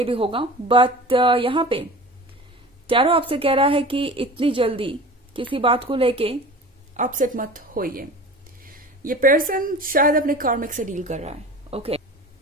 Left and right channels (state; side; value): normal; both; correlation 0.37